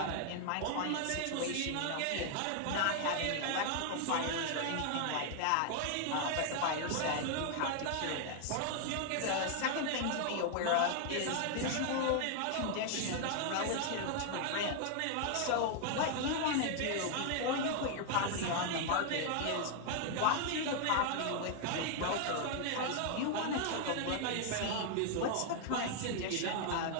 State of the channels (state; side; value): different; both; correlation 0.00